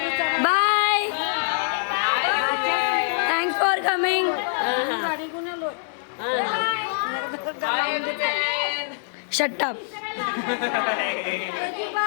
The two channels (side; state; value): right; silent; digital silence